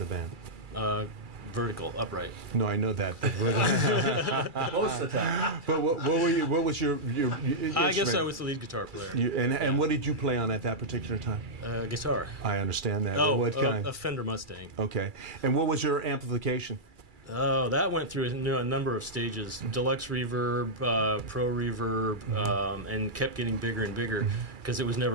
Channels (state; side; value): late; left; 2.3 ms